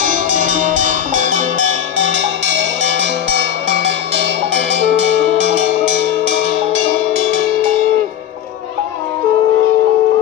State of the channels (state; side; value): quieter; right; 9.9 dB